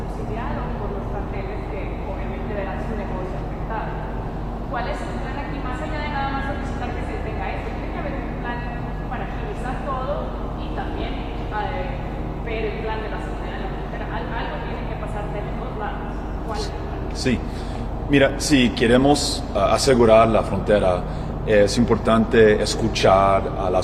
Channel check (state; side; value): identical; both; correlation 1.00